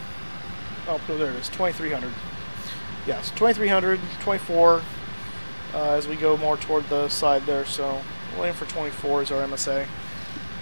Oh, no, there it is. 2,300. Yes, 2,300, 24. As we go more toward the side there, so we'll aim for 24 is our MSA.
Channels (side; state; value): both; inverted; correlation -1.00